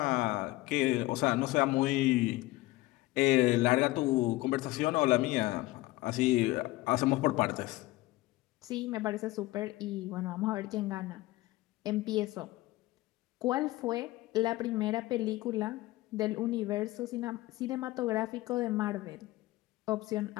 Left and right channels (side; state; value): right; quieter; 18.7 dB